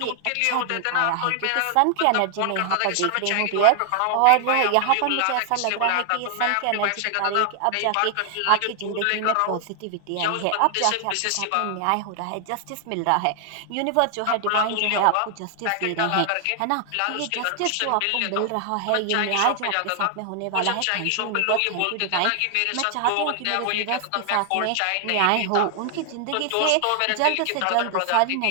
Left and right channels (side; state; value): both; different; correlation 0.00